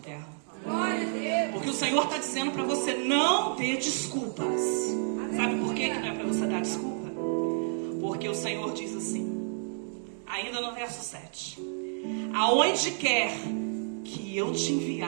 Glória a Deus. Porque o Senhor está dizendo para você não ter desculpas. Sabe por que não é para você dar desculpa? Porque o Senhor diz assim, ainda no verso 7. Aonde quer que eu te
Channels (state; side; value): silent; left; 58 dB below the other